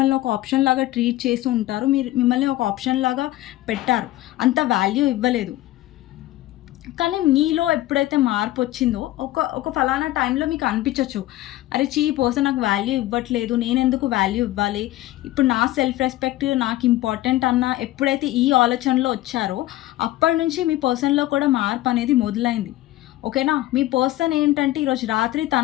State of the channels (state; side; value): quieter; right; 16.2 dB